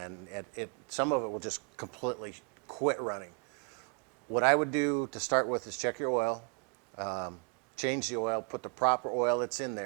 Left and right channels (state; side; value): quieter; left; 37.6 dB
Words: some of it will just completely quit running. What I would do to start with is check your oil, change the oil, put the proper oil that's in